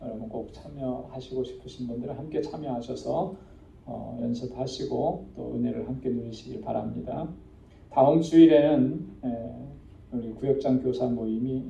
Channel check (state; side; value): identical; both; correlation 1.00